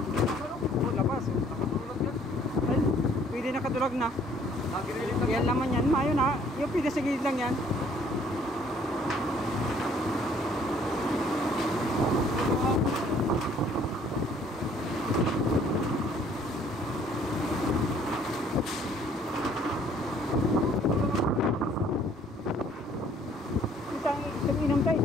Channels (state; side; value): normal; both; correlation 0.60